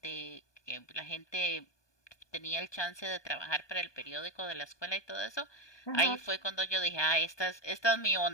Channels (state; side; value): late; right; 1.2 ms